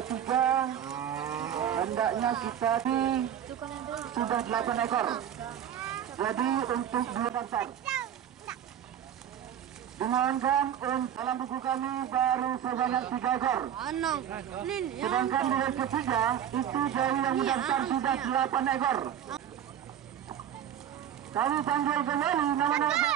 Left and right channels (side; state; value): left; quieter; 9.8 dB